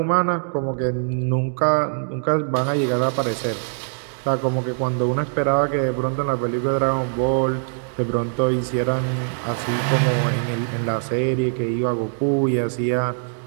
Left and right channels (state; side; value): silent; left; digital silence